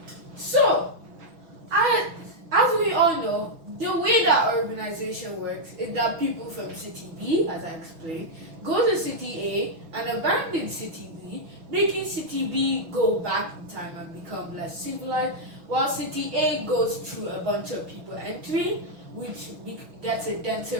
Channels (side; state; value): left; late; 6.0 ms